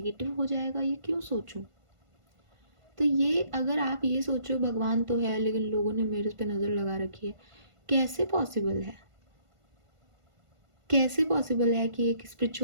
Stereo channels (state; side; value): late; left; 1.5 ms